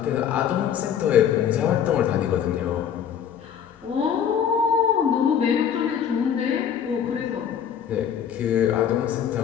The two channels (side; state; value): right; quieter; 8.5 dB